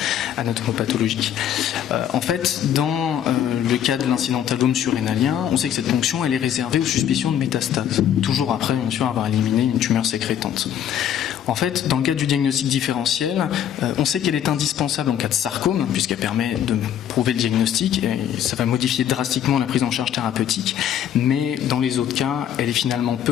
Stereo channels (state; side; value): quieter; right; 10.0 dB